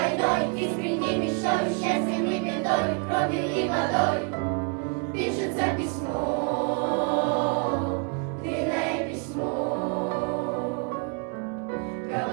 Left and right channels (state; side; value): quieter; left; 35.1 dB